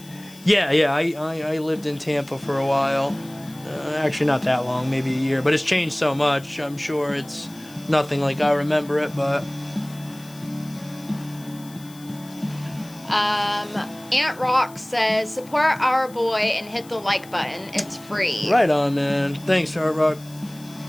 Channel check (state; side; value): noise; left; hiss, 22 dB below the sound